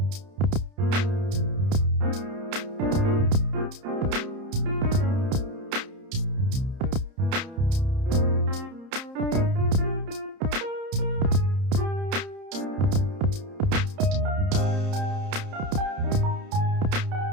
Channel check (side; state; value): left; late; 30 ms